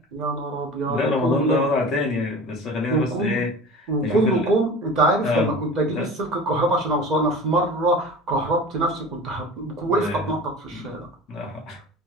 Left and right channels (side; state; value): both; normal; correlation 0.36